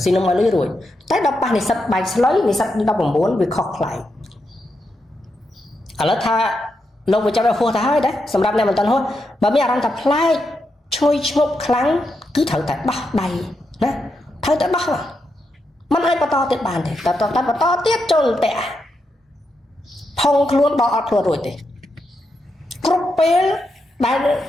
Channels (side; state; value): both; normal; correlation 0.84